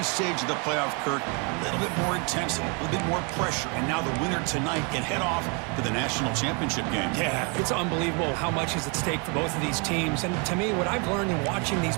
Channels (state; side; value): quieter; left; 33.6 dB